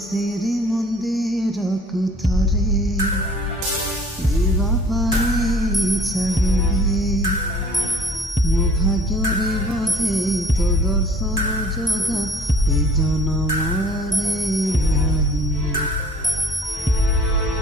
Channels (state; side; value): normal; both; correlation 0.52